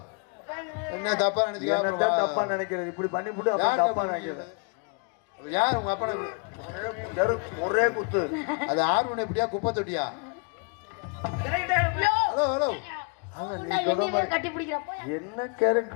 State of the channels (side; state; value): right; quieter; 34.4 dB